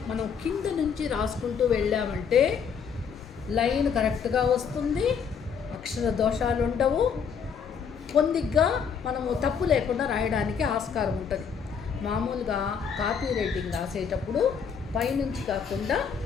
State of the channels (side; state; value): right; quieter; 6.7 dB